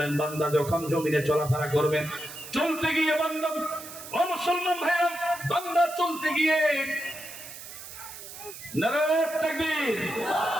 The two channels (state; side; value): noise; right; hiss, 13 dB below the sound